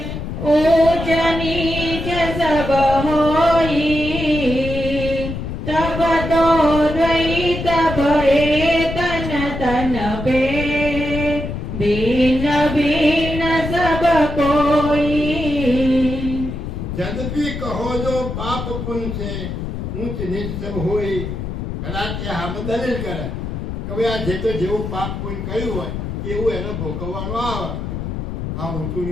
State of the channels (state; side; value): noise; left; rumble, 5 dB below the sound